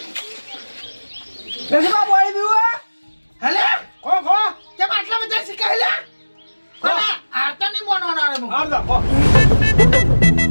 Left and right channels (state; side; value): inverted; both; correlation -1.00